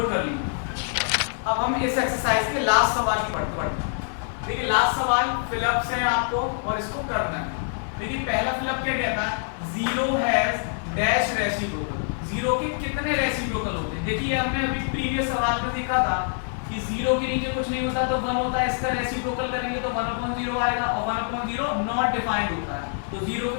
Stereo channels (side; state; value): right; silent; 62 dB below the other